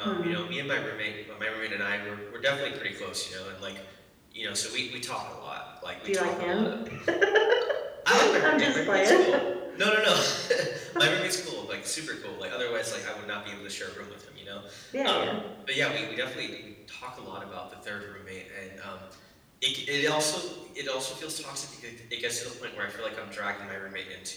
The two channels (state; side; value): identical; both; correlation 1.00